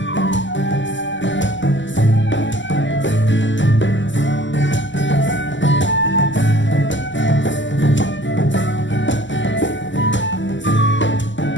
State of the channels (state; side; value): late; right; 0.54 ms